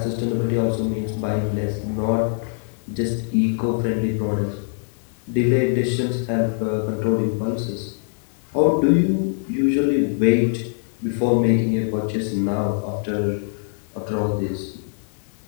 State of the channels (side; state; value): right; silent; digital silence